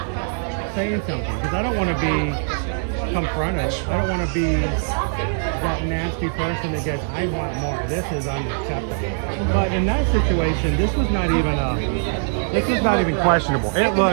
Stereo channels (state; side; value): silent; left; digital silence